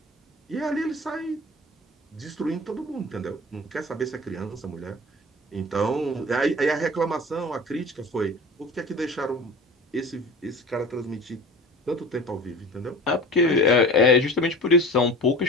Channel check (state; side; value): normal; both; correlation 0.37